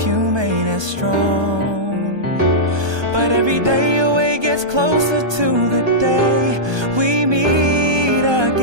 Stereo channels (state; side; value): late; left; 1.2 ms